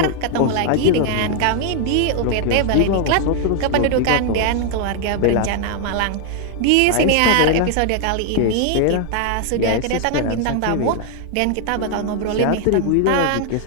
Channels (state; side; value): different; both; correlation 0.00